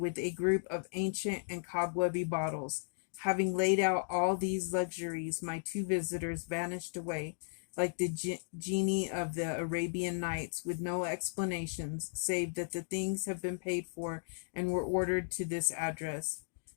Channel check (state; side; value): silent; right; digital silence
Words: a group of ancient and cobwebby bottles. Having laid out all these luxuries, my two visitors vanished away, like the genie of the Arabian Nights, with no explanations, save that the things have been paid for and were ordered to this address.